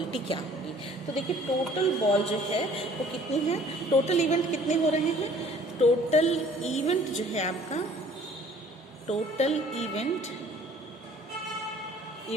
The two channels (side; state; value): both; normal; correlation 0.54